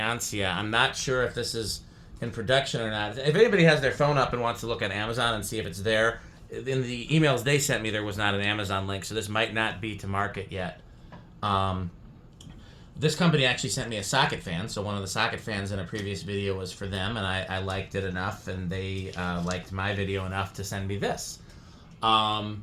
I'm not sure if this is in production or not. If anybody has their phone up and wants to look at Amazon and see if it's there, in the emails they sent me there was not an Amazon link, so this might not be to market yet. This company actually sent me a socket fan, so one of the socket fans in a previous video was for them, and I liked it enough, and they liked my video enough to send me this. So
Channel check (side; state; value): both; identical; correlation 1.00